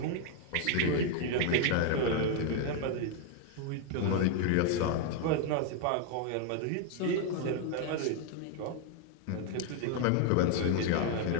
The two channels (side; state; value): both; different; correlation 0.00